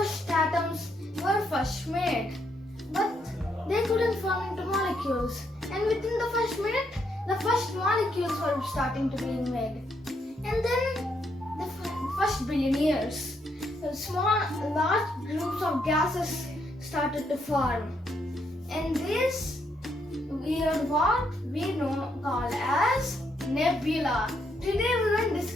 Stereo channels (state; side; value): normal; both; correlation 0.76